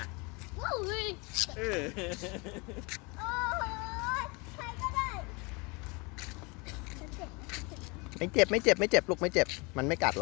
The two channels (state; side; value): quieter; right; 28.5 dB